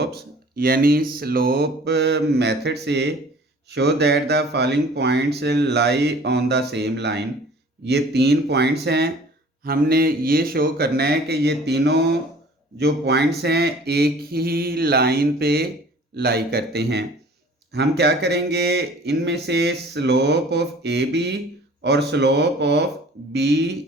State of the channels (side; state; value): both; normal; correlation 0.49